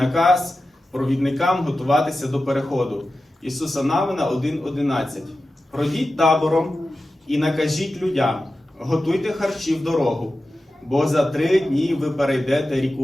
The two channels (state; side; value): normal; both; correlation 0.93